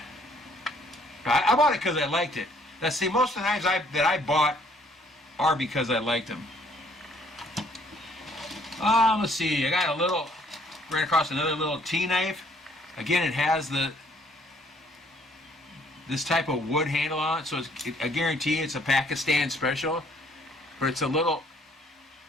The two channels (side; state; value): both; normal; correlation 0.63